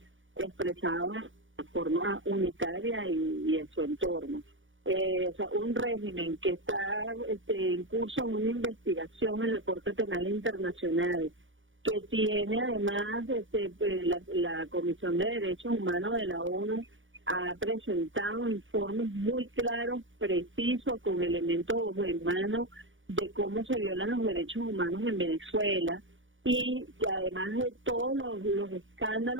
expresados de forma unitaria y a su entorno. o sea, un régimen que está en curso en una investigación en la Corte Penal Internacional, que tiene además la Comisión de Derechos Humanos de la ONU ha presentado informes muy claros, precisos, con elementos en mano de cómo se violan los derechos humanos en Venezuela, y además de todos los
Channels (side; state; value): left; late; 0.57 ms